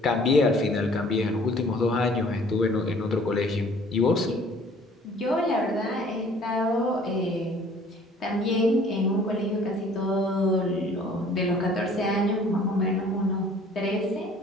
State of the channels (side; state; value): both; normal; correlation 0.54